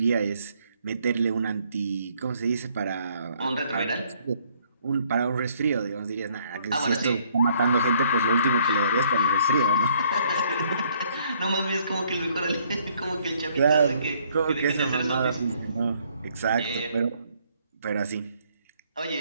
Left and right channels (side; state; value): both; inverted; correlation -0.65